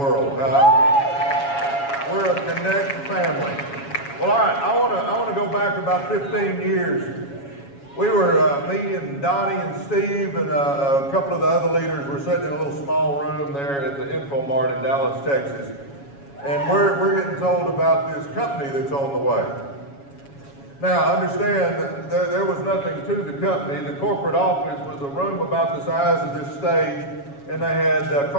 We're a Connect family. Well, all right, I want to go back about 15 years. We were, me and Donnie and Steve and a couple of the other leaders were sitting in a little small room there at the Infomart in Dallas, Texas. And we're getting told about this company that's on the way. Now, understand that there was nothing to the company. The corporate office was a room about the size of this stage, and they had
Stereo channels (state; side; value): late; right; 7.2 ms